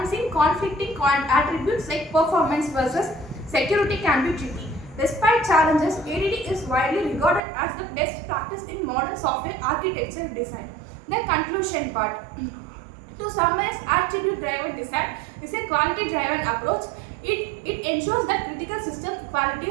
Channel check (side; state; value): left; drops out; at 7.4 s